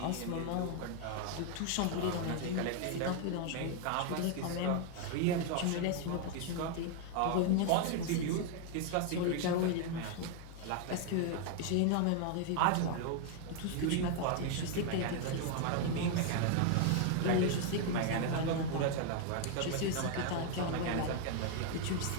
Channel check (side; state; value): both; different; correlation 0.00